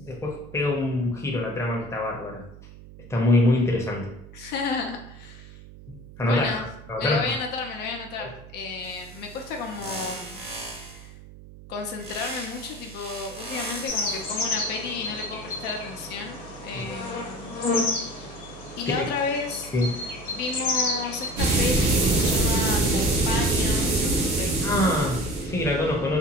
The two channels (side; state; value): right; noise; hum, 17 dB below the sound